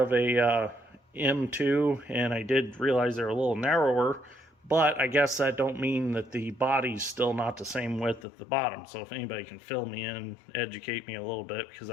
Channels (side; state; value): right; drops out; at 8.2 s